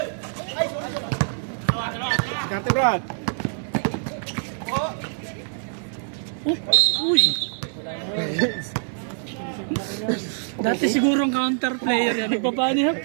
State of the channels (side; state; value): left; silent; 61 dB below the other